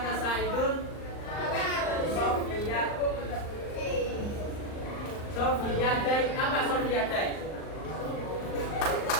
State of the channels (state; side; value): late; right; 39 ms